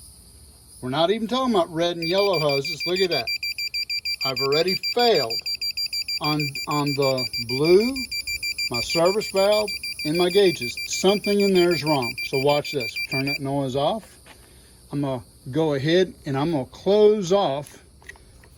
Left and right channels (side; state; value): both; identical; correlation 1.00